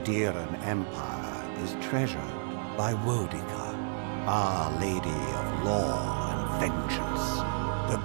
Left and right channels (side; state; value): left; silent; digital silence